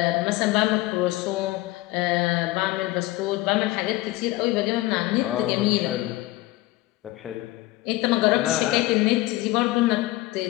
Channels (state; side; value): quieter; right; 18.7 dB